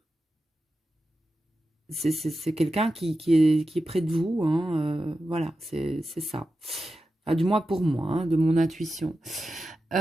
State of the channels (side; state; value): both; normal; correlation 0.91